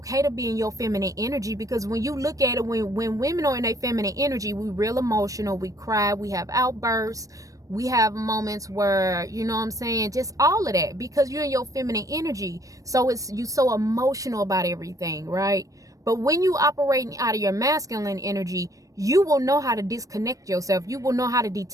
to be in your feminine energy. Because when you look at it, when women are in their feminine energy, we real emotional, we cry, we have outbursts. We have moments where, you know what I'm saying, just all of that, because you're in your feminine energy. So you so emotional about everything, right? But when you operating out of your masculine energy, you will know how to disconnect yourself. You will know how to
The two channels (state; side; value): late; left; 0.16 ms